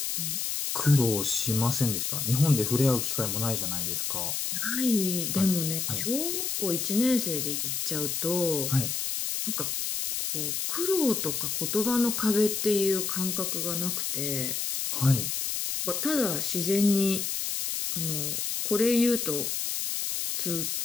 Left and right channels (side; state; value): left; noise; hiss, 1 dB below the sound